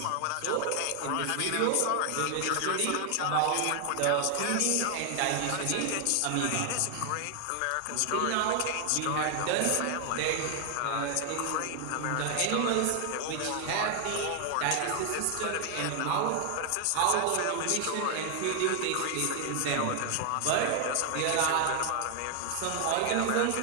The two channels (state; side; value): different; both; correlation 0.00